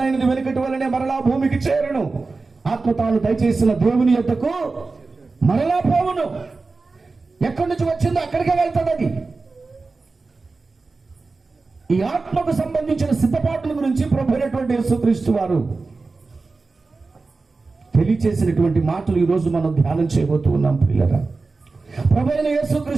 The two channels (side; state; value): left; quieter; 3.9 dB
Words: వెనుకటి వలనే మరలా భూమికి చేరును, ఆత్మ తాను దయచేసిన దేవుని యొద్దకు మరలా పోవును. ఎక్కడి నుంచి వచ్చిందో అక్కడికే వెళ్తాడు. అది ఈ ఆత్మకు సంబంధించిన సిద్ధపాట్ల గురించి ప్రభువైనటువంటి యేసుక్రీస్తు వారు తెలియచేసినటువంటి మాటలు ఈరోజు మనం ధ్యానం చేయబోతూ ఉన్నాం. పిల్లరా, ప్రభువైన